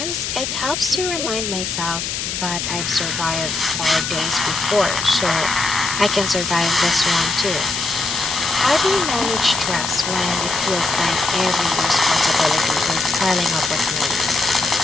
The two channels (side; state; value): left; noise; hiss, 3 dB below the sound